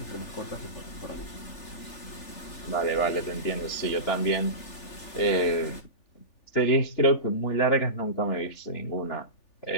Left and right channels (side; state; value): right; late; 3.4 ms